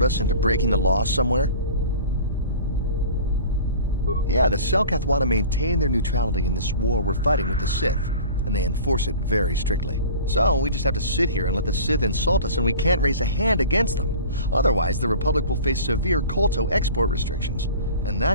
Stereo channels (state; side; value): inverted; both; correlation -0.41